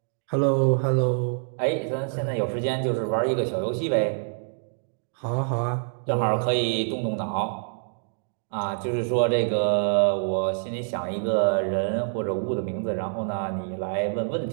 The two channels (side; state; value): left; silent; digital silence